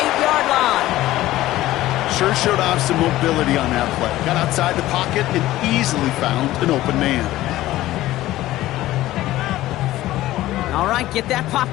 line. Sure showed off some mobility on that play. Got outside the pocket and easily found an open man. All right, get that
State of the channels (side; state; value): right; quieter; 15.7 dB